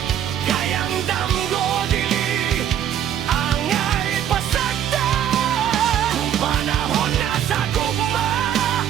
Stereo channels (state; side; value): quieter; left; 10.2 dB